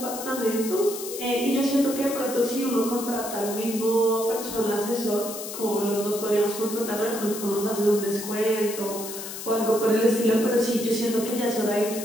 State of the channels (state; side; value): noise; left; hiss, 9 dB below the sound